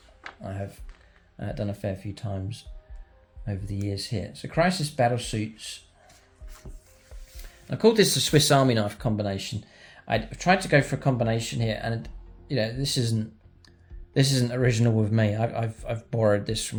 I have done a fair few times over the years here. So Crisis Battlesuits. I called this the Swiss Army knife combination. I've tried to go for a combination here, and you know this isn't original with me. I've borrowed this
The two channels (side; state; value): both; identical; correlation 1.00